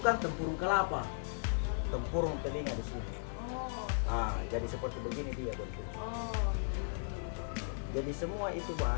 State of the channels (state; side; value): silent; right; digital silence